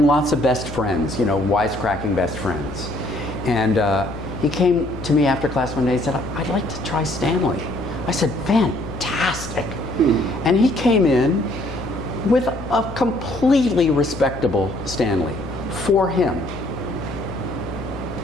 lots of best friends, you know, wisecracking best friends. And he came to me after class one day and said, I'd like to try Stanley. I said, fantastic. And he came in with a completely respectable Stanley for him.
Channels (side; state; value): left; noise; hum, 12 dB below the sound